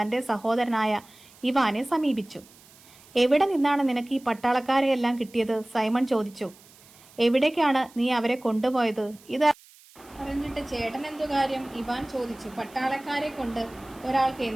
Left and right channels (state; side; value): noise; right; hiss, 25 dB below the sound